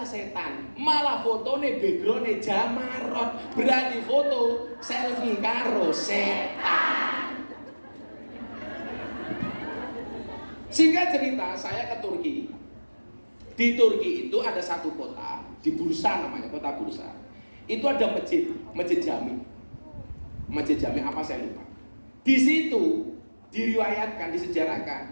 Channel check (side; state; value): both; inverted; correlation -1.00